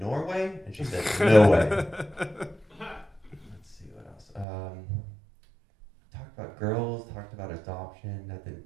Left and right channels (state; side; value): drops out; left; at 4.5 s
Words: Norway? And she said, no way. Let's see what else. Talked about girls, talked about adoption. That didn't